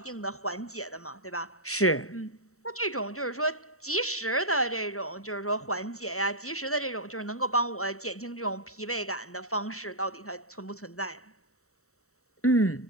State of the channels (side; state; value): right; late; 0.64 ms